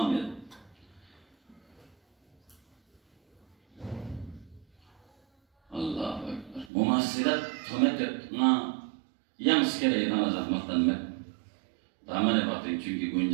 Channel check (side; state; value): left; drops out; at 6.7 s